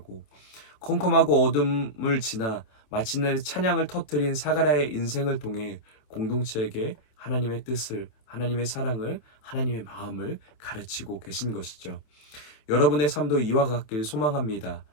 컴컴하고 어둠을 지나 마침내 찬양을 터뜨린 사가랴의 인생을 통해 공동체에게 하나님의 뜻을, 하나님의 사랑을, 하나님의 마음을 가르치고 계신 것이죠. 여러분의 삶도 이와 같길 소망합니다.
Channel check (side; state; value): right; late; 27 ms